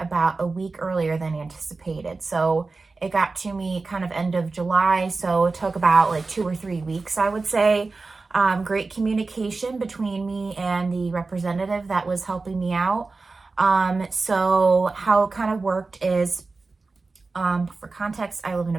a week earlier than anticipated. So it got to me kind of end of July. So it took about like 2 or 3 weeks, I would say. Great communication between me and the representative that was helping me out. So how it kind of worked is, for context, I live in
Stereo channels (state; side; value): quieter; left; 3.8 dB